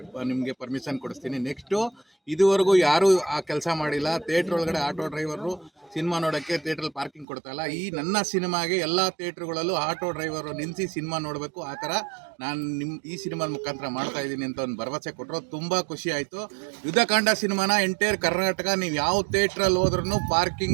ನಿಮಗೆ ಪರ್ಮಿಷನ್ ಕೊಡಿಸ್ತೀನಿ. ನೆಕ್ಸ್ಟು ಇದುವರೆಗೂ ಯಾರೂ ಆ ಕೆಲಸ ಮಾಡಿಲ್ಲ. ಥಿಯೇಟ್ರ್ ಒಳಗಡೆ ಆಟೋ ಡ್ರೈವರು ಸಿನಿಮಾ ನೋಡೋಕ್ಕೆ ಥಿಯೇಟ್ರಲ್ಲಿ ಪಾರ್ಕಿಂಗ್ ಕೊಡ್ತಾಯಿಲ್ಲ. ಈ ನನ್ನ ಸಿನಿಮಾಗೆ ಎಲ್ಲ ಥಿಯೇಟ್ರುಗಳಲ್ಲೂ ಆಟೋ ಡ್ರೈವರು ನಿಲ್ಲಿಸಿ ಸಿನಿಮಾ ನೋಡಬೇಕು. ಆ ಥರ ನಾನು ಈ ಸಿನಿಮಾದ ಮುಖಾಂತರ ಮಾಡ್ತಾ ಇದ್ದೀನಿ ಅಂತ ಒಂದು ಭರವಸೆ ಕೊಟ್ಟರು. ತುಂಬ ಖುಷಿ ಆಯಿತು. ಯುದ್ಧಕಾಂಡ ಸಿನಿಮಾನ ಎಂಟೈರ್ ಕರ್ನಾಟಕ ನೀವು ಯಾವ ಥಿಯೇಟ್ರಲ್ಲಿ ಹೋದ್ರೂ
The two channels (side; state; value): left; drops out; at 7.2 s